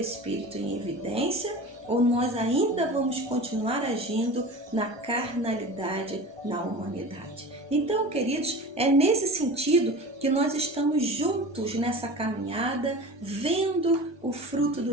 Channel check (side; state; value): left; late; 1.2 ms